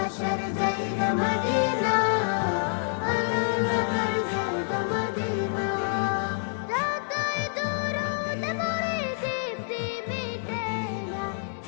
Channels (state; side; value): silent; right; digital silence